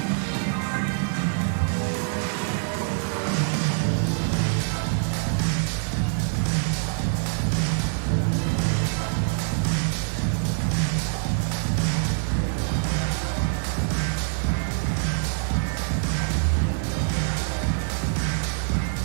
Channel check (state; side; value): silent; left; 60 dB below the other